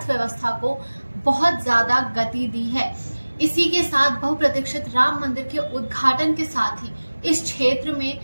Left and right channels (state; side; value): inverted; both; correlation -1.00